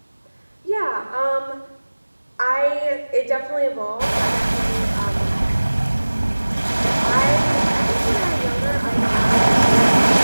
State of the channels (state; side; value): inverted; both; correlation -1.00